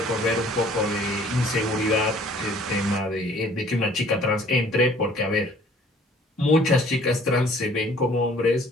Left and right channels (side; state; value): both; normal; correlation 0.55